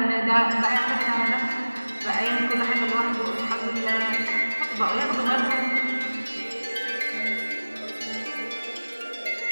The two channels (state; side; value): inverted; both; correlation -1.00